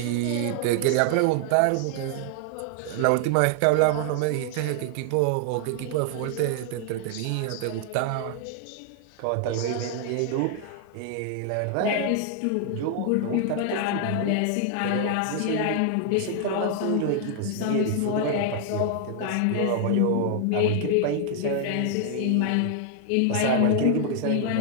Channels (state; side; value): different; both; correlation 0.00